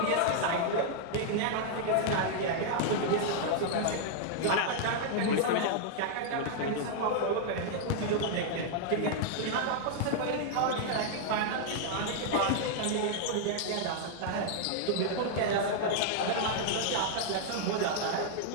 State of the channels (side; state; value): both; different; correlation -0.01